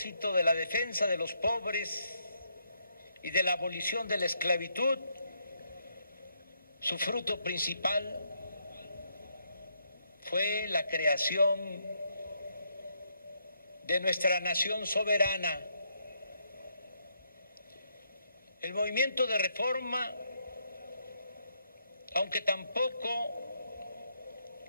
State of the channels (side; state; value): both; inverted; correlation -0.76